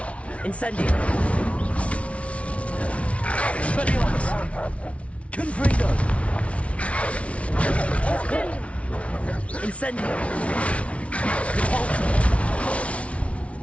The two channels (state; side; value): late; right; 0.063 ms